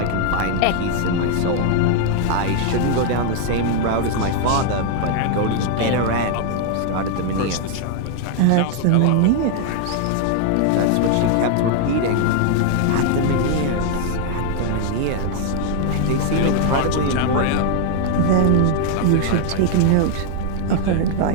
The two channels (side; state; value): both; different; correlation 0.00